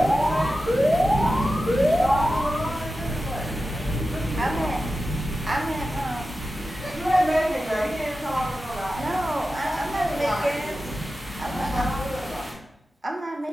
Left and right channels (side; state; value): both; normal; correlation 0.93